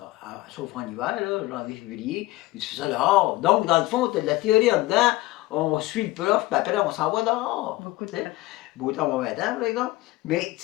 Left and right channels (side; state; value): right; quieter; 19.0 dB